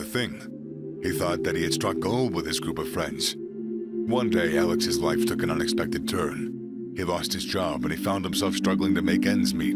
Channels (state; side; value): identical; both; correlation 1.00